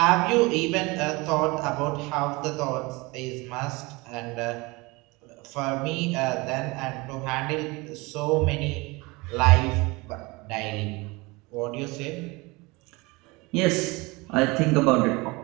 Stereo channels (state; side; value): quieter; left; 24.5 dB